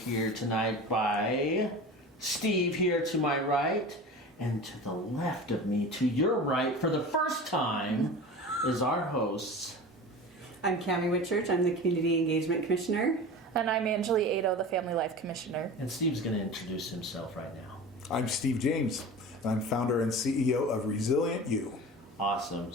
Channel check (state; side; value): normal; both; correlation 0.34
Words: tonight by Steve here to my right, and to the left of me, to your right, for the first time, is our hosts. I'm Cammy Whitchurch. I'm the Community Engagement Commissioner. And I'm Angelee Aedo, the Family Life Commissioner. And Steve's going to introduce himself right now. I'm Steve James, and I'm founder and CEO of ResilientYou. Awesome.